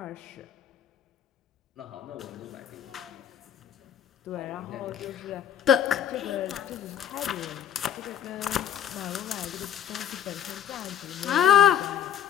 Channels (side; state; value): right; quieter; 9.9 dB